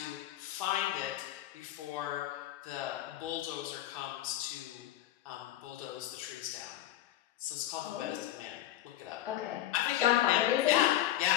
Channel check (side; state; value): right; quieter; 13.7 dB